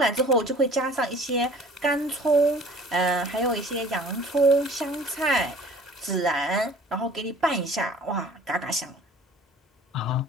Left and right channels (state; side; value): normal; both; correlation 0.49